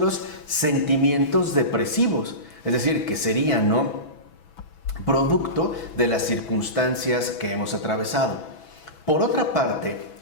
sentimientos depresivos, es decir, que serían, ¿no?, producto de las circunstancias que hemos atravesado. Por otra parte,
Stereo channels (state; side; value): late; right; 6.1 ms